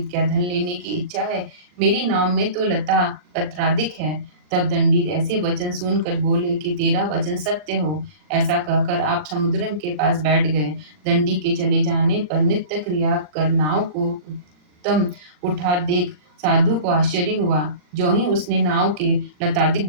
क्या धन लेने की इच्छा है? मेरी नाव में तो लता पत्रादिक है। तब दंडी ऐसे वचन सुनकर बोले कि तेरा वचन सत्य हो। ऐसा कहकर आप समुद्र के पास बैठ गए। दंडी के चले जाने पर नित्य क्रिया कर नाव को उत्तम उठा देख साधु को आश्चर्य हुआ। जो ही उसने नाव के लतादिक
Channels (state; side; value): late; left; 39 ms